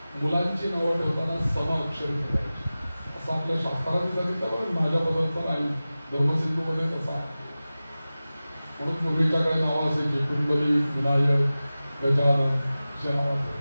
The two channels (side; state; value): both; inverted; correlation -0.96